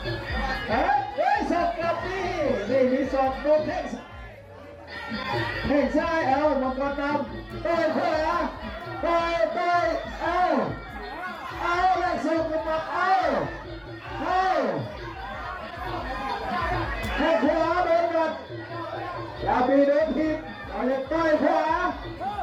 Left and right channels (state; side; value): identical; both; correlation 1.00